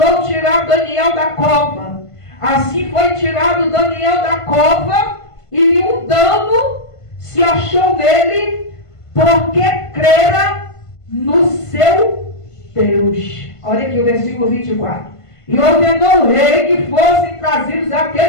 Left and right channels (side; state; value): right; late; 1.5 ms